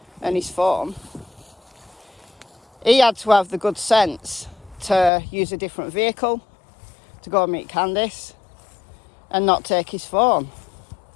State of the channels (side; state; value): right; drops out; at 5.1 s